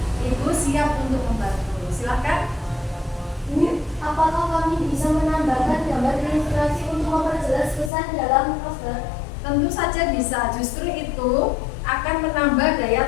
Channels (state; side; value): drops out; right; at 7.9 s